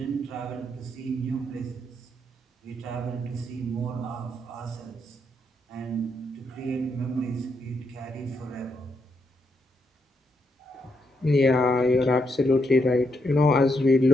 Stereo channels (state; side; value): normal; both; correlation 0.79